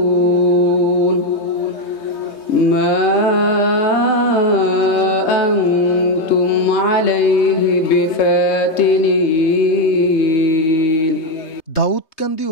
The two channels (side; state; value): right; late; 3.2 ms